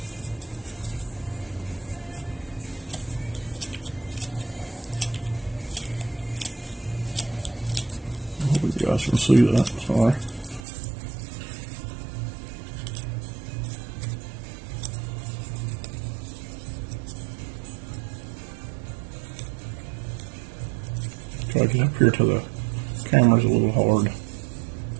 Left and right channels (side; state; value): left; drops out; at 10.6 s